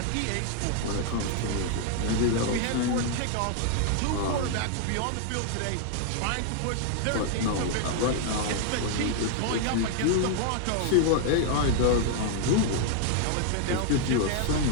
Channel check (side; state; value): both; different; correlation 0.00